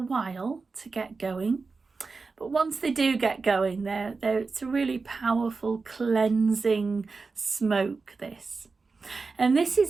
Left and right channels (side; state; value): left; quieter; 4.3 dB